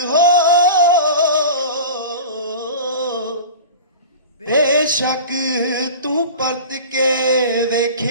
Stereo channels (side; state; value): both; inverted; correlation -0.35